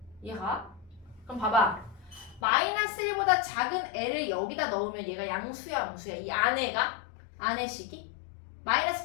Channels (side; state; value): right; drops out; at 2.4 s